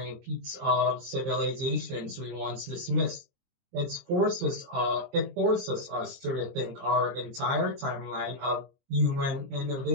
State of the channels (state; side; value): late; left; 23 ms